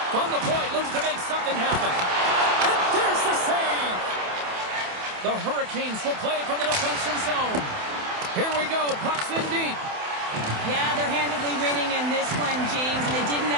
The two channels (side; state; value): left; late; 28 ms